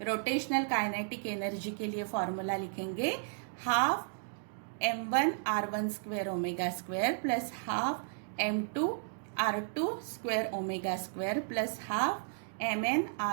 रोटेशनल काइनेटिक एनर्जी के लिए फॉर्मूला लिखेंगे half m1r1 square omega square plus half m2r2 square omega square plus half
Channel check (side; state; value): left; silent; digital silence